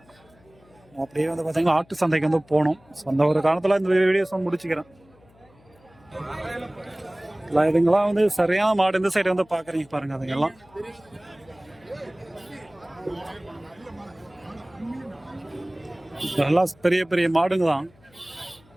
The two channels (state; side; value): noise; left; hum, 29 dB below the sound